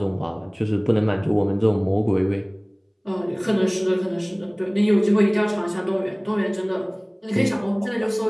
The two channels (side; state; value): both; identical; correlation 1.00